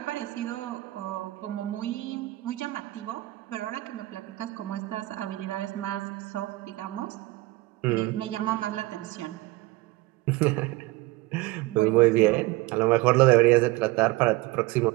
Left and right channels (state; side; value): quieter; left; 20.0 dB